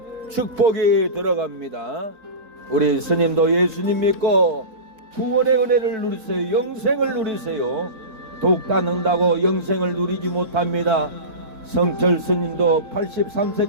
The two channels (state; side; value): late; left; 4.5 ms